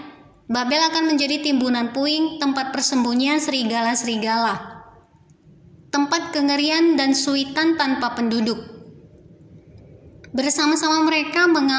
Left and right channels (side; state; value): both; identical; correlation 1.00